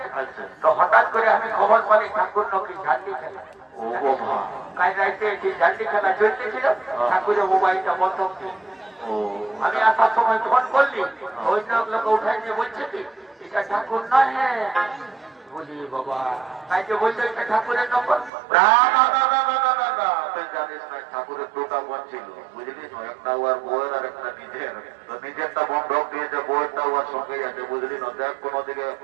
আচ্ছা, তো হঠাৎ করে আমি খবর পালি ঠাকুর নাকি ঝান্ডি খেলা। ও বাবা, কাল রাইতে ঝান্ডি খেলা চলতেছিল, ঠাকুরের মোবাইলটা বন্ধ ছিল। ও আমি আসার সময় ফোন করলি, ওই লোক উঠাই নিয়ে বলছে কি এটা ঠাকুর নয়। বলি বাবা, তাই যে বলছে এটা ঠাকুরের নম্বর। না না না না না না না না, তুই জানিস না ঠাকুরের দুটা বোন ছিল বুঝলি? একটা ওর বউয়ের আর একটা নিজের। তো নিজেরটা বন্ধক দিয়েছে, বউয়েরটা ওর সঙ্গেই আছে বুঝলি না? দেখ কোনো দিকে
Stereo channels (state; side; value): drops out; left; at 18.3 s